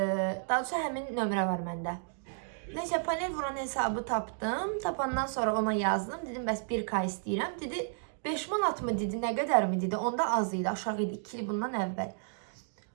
doğrusu həmin nömrə var məndə. Neysə, panel vuran hesabı tapdım. Tapandan sonra ona yazdım. Dedim, bəs 1K istəyirəm. Dedi, 5 manat mı dedi, nə qədər mi dedi. Onda az idi, aşağı idi, 2 il bundan əvvəl.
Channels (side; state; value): left; silent; digital silence